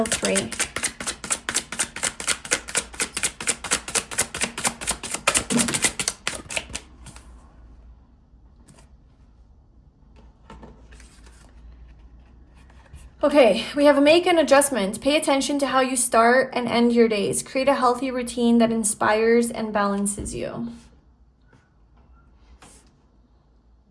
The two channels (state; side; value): identical; both; correlation 1.00